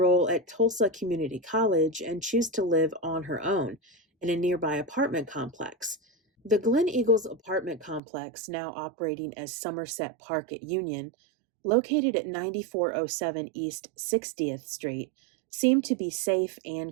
at Tulsa Community College and choose to live on her own in a nearby apartment complex. The Glen Eagles apartment complex, now operating as Somerset Park at Union, located at 9407 East 60th Street, seemed to be safe and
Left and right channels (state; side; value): drops out; left; at 8.0 s